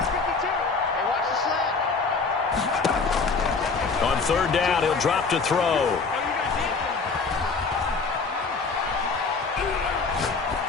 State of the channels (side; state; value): right; quieter; 4.5 dB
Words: On 3rd down, he'll drop to throw.